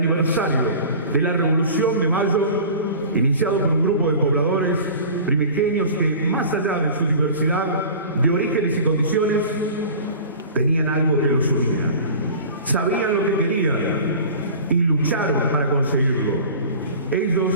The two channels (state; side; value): inverted; both; correlation -0.39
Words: de la Revolución de Mayo, iniciado por un grupo de pobladores primigenios que, más allá de su diversidad de orígenes y condiciones, tenían algo que los unía. Sabían lo que querían y lucharon para conseguirlo. Ellos